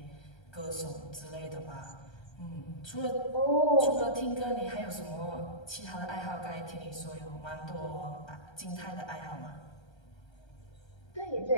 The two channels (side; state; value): right; late; 1.3 ms